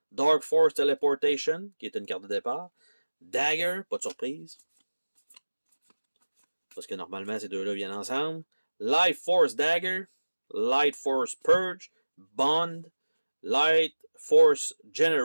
Dark Force Teleportation, qui est une carte de départ. Dagger, pas de surprise. Parce que normalement, ces deux-là viennent ensemble. Light Force Dagger, Light Force Purge, Bond, Light Force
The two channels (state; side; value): inverted; both; correlation -1.00